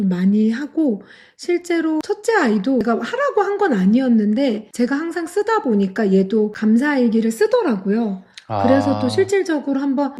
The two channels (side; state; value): both; identical; correlation 1.00